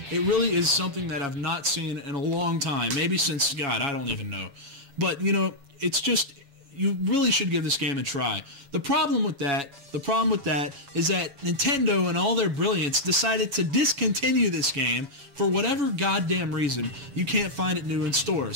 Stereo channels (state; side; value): late; left; 7.1 ms